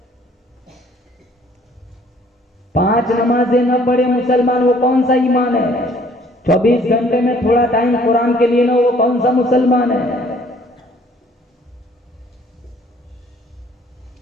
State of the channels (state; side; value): normal; both; correlation 0.58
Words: 5 نمازیں نہ پڑھے مسلمان، وہ کون سا ایمان ہے؟ 24 گھنٹے میں تھوڑا ٹائم قرآن کے لیے نہ، وہ کون سا مسلمان ہے؟